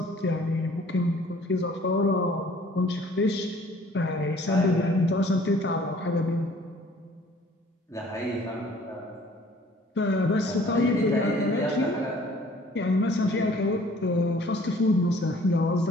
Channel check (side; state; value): both; normal; correlation 0.55